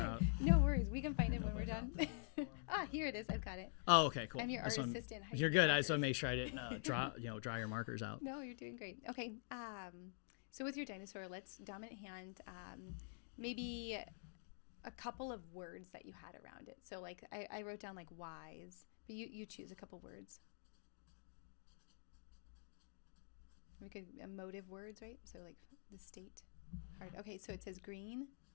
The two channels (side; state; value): right; silent; digital silence